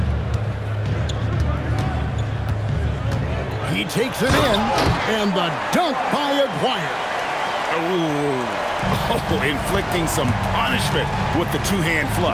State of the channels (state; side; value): identical; both; correlation 1.00